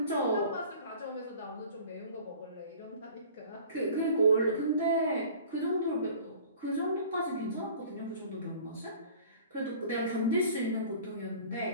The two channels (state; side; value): inverted; both; correlation -0.46